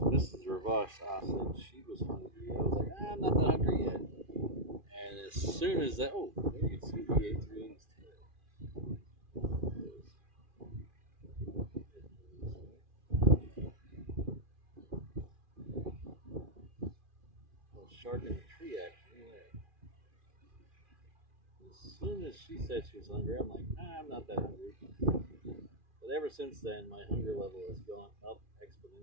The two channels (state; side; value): late; left; 2.4 ms